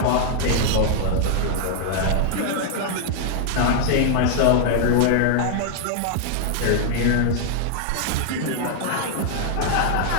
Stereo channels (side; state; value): both; different; correlation -0.01